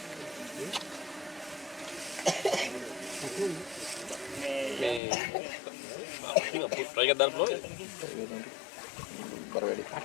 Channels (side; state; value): right; drops out; at 5.0 s